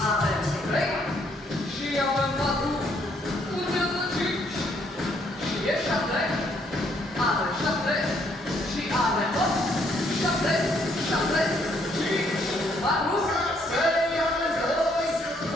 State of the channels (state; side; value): normal; both; correlation 0.69